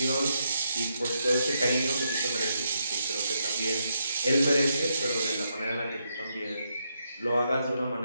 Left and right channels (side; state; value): both; inverted; correlation -0.81